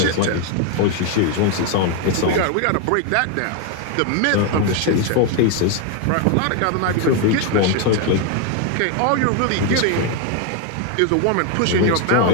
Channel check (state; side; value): different; both; correlation 0.01